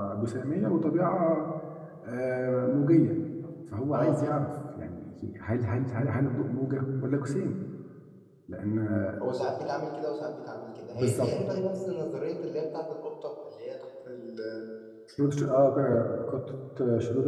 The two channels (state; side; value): identical; both; correlation 1.00